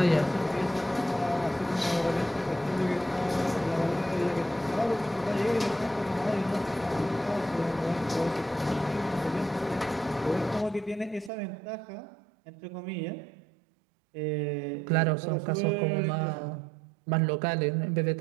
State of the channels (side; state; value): left; drops out; at 11.3 s